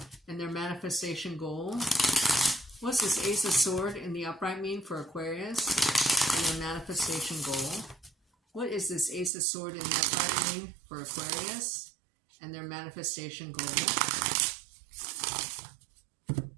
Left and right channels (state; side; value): drops out; left; at 9.3 s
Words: and their manifestation goal? What's this Ace of Sword in the upright mean for Aquarius and their manifestation goal? What is this Ace of Sword in the upright mean for Aquarius and their manifestation goal?